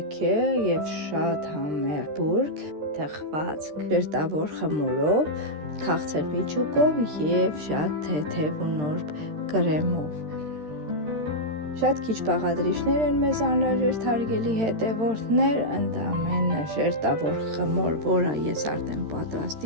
եւ շատ համեղ բուրգ, թխված ժերտավոր խմորով, քաղցր միջուկով եւ շատ թեթև ու նուրբ կրեմով։ Շատ քիչ բաղադրիչներ են մեզ անհրաժեշտ, հարգելի հետևորդներ, ընդամենը ժերտավոր խմոր, որը ես արդեն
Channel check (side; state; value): left; late; 13 ms